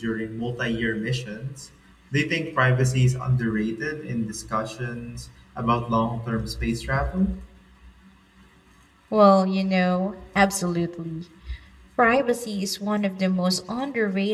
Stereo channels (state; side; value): identical; both; correlation 1.00